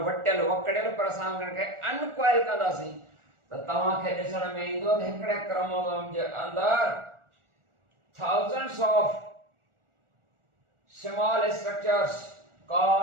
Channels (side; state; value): left; late; 1.4 ms